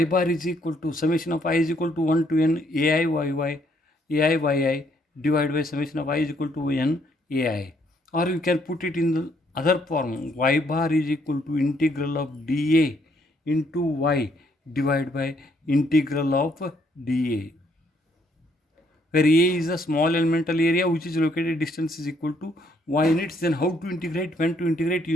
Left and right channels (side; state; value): both; normal; correlation 0.69